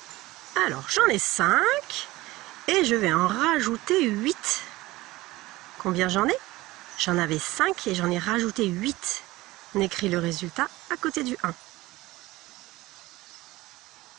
Alors, j'en ai 5 et je vais en rajouter 8. Combien j'en ai? J'en avais 5 et j'en ai rajouté 8. On écrit le résultat à côté du 1.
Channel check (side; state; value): left; quieter; 19.0 dB